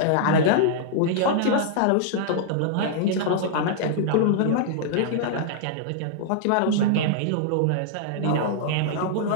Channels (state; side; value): different; both; correlation -0.01